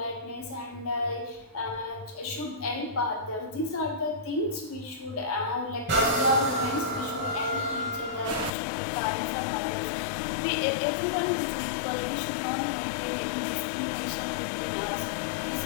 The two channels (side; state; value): right; drops out; at 8.5 s